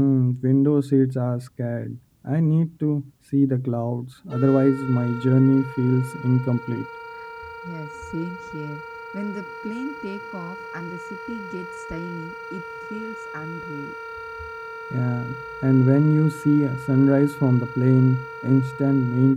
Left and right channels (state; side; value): identical; both; correlation 1.00